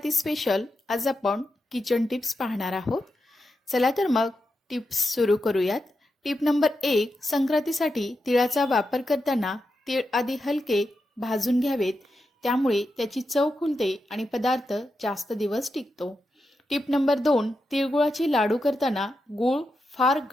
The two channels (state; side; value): normal; both; correlation 0.87